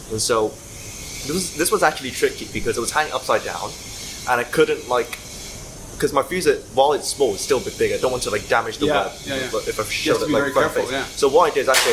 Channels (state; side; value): identical; both; correlation 1.00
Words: And so this was actually tricky because it was hanging upside down, and I couldn't because my fusee, while it's small, it's still a bit big. I don't want to damage the web if I show it front face. So what I did is